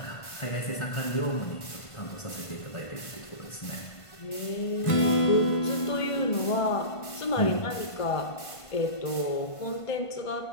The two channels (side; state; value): right; late; 1.5 ms